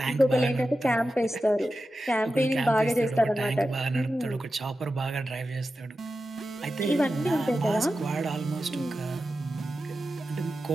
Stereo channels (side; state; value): both; normal; correlation 0.92